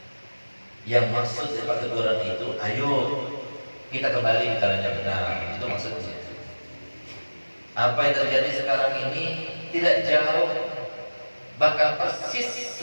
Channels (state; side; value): inverted; both; correlation -1.00